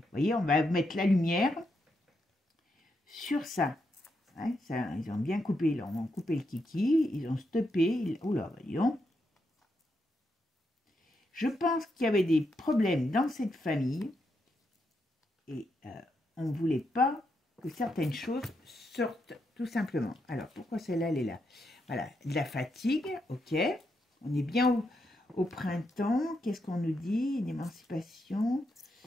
voyez, on va mettre la lumière sur ça. Ouais, ça ils ont bien coupé. Ils ont coupé le kiki. Ils ont stoppé. Oula, voyons. Je pense qu'il y avait des problèmes dans cette famille. Et on ne voulait pas que certaines choses sortent, tout simplement. Alors, pourquoi celle-là, elle est là? Voilà, de la fatigue, ok. On est bien au printemps. Qu'est-ce qu'on nous dit? Une émancipation.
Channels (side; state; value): both; normal; correlation 0.82